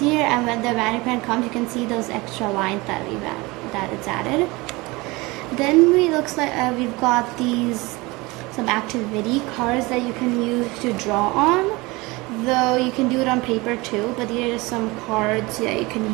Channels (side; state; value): left; quieter; 23.2 dB